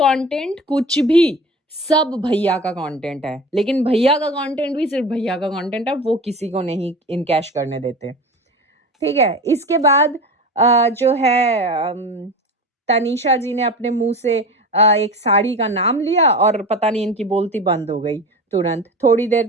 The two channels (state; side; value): normal; both; correlation 0.32